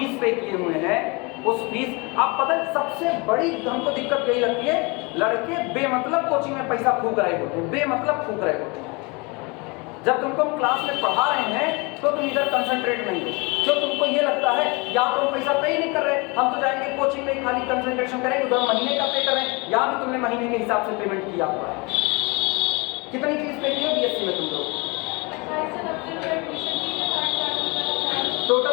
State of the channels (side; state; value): right; quieter; 28.0 dB